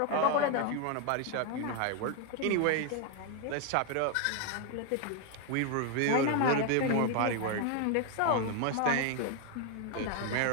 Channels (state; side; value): different; both; correlation 0.01